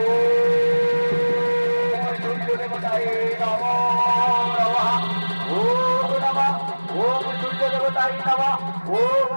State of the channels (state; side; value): inverted; both; correlation -1.00